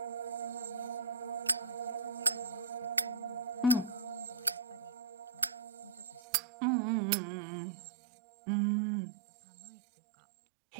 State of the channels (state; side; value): drops out; left; at 6.2 s